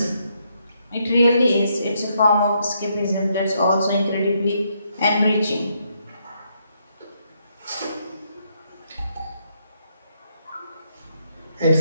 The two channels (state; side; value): inverted; both; correlation -0.75